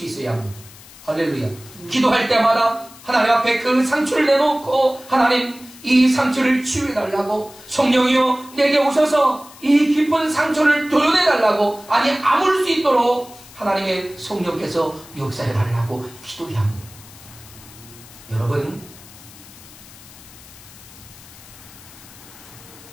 있어야 합니다. 할렐루야. 기도할 때마다 하나님 앞에 그 상처를 내놓고, 하나님, 이 상처를 치유해달라고, 성령이여 내게 오셔서 이 깊은 상처를 도려내달라고, 아니 아물 수 있도록 하나님의 성령께서 역사해달라고 기도해야 합니다. 여러분,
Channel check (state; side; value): noise; left; hiss, 20 dB below the sound